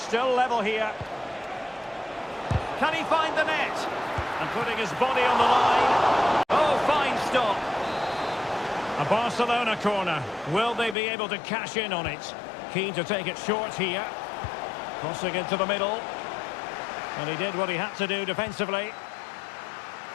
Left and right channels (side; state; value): right; drops out; at 11.0 s